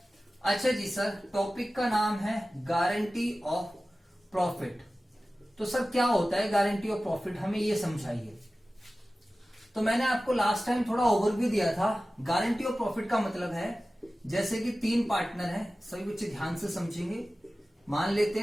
अच्छा जी सर, टॉपिक का नाम है गारंटी ऑफ प्रॉफिट। तो सर क्या होता है गारंटी ऑफ प्रॉफिट, हमें ये समझाइए। तो मैंने आपको लास्ट टाइम थोड़ा ओवरव्यू दिया था। गारंटी ऑफ प्रॉफिट का मतलब है, जैसे कि 3 पार्टनर हैं, सभी बच्चे ध्यान से समझेंगे। मान लेते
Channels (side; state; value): both; normal; correlation 0.96